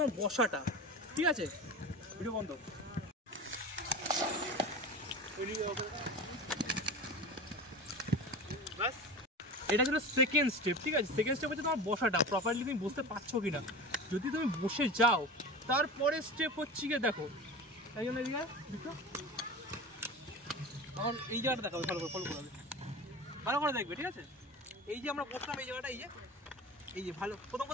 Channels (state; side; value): normal; both; correlation 0.31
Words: বসাটা, ঠিক আছে। ভিডিও বন্ধ। এটা ছিল সেকেন্ড স্টেপ, ঠিক আছে। সেকেন্ড স্টেপ হচ্ছে তোমার বসাটা, প্রপারলি তুমি বসতে পারছো কিনা। যদি তুমি বসে যাও, তারপরে স্টেপ হচ্ছে গিয়ে দেখো, তাই জন্য এদিকে আমার এই জায়গাটা দেখাবে, ভালো করে ফলো করবে, ভালো করে দেখবে, ঠিক আছে। এই যে আমরা বসলাম এই জায়গাটা, এই যে ভালো প্রথম